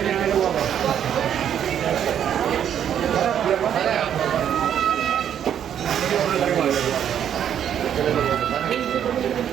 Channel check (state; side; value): quieter; left; 9.4 dB